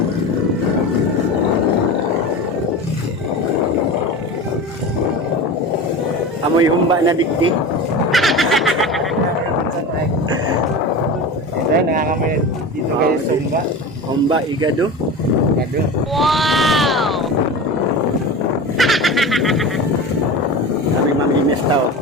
Amoy humba na digdi. Ito, nangangamoy dito kayo sumba. Humba igado. Wow! Kami mamimis tao.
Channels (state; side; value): normal; both; correlation 0.29